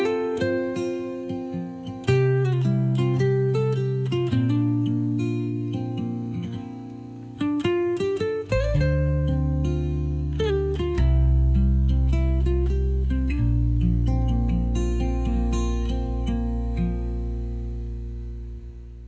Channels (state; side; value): identical; both; correlation 1.00